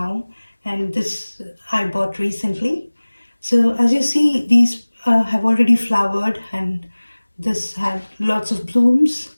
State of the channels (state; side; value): inverted; both; correlation -1.00